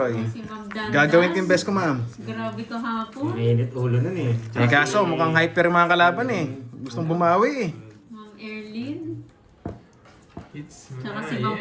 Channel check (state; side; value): identical; both; correlation 1.00